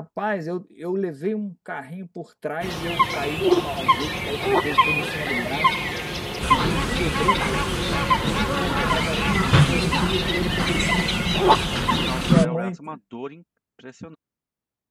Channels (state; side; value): identical; both; correlation 1.00